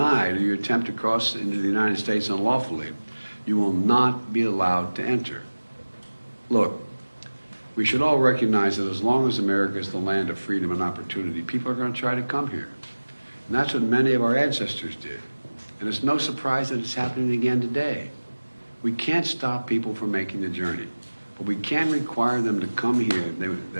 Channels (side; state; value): both; inverted; correlation -1.00